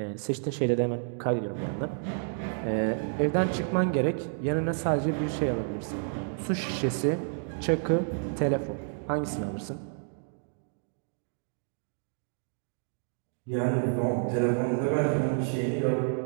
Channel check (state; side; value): silent; left; digital silence